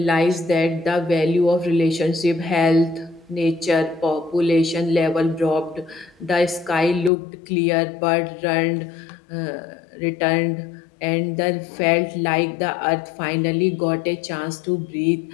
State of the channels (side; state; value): right; drops out; at 7.1 s